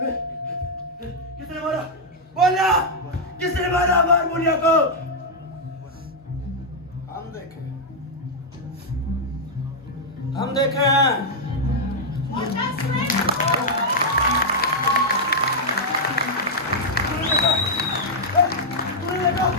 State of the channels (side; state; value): both; normal; correlation -0.04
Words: किसने मारा? बोलना, किसने मारा हारमोनिया को? हम देखे हैं।